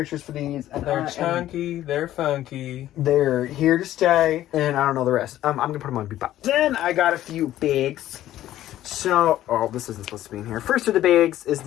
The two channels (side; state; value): right; quieter; 13.4 dB